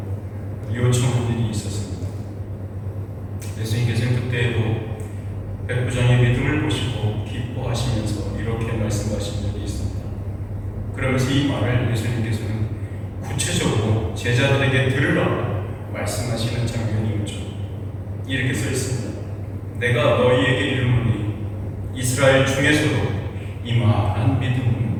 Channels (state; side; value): identical; both; correlation 1.00